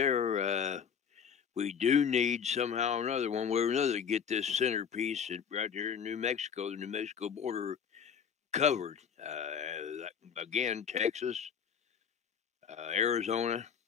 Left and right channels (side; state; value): right; quieter; 7.4 dB